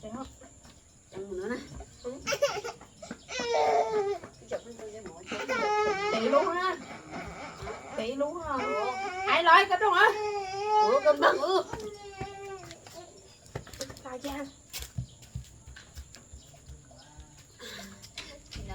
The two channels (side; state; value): both; identical; correlation 1.00